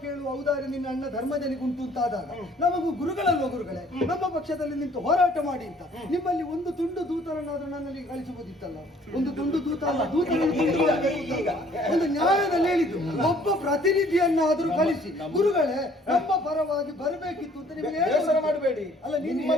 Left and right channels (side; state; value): both; normal; correlation 0.58